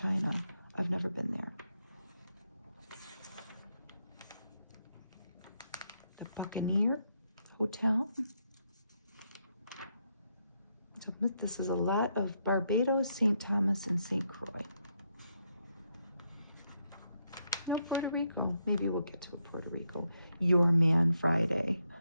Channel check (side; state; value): both; inverted; correlation -0.79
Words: I've never been there. The Buccaneer Hotel. This is a lot of Barbados, St. Thomas, and St. Croix. Not Puerto Rico. Maybe we'll get to Puerto Rico. Your Man Friday.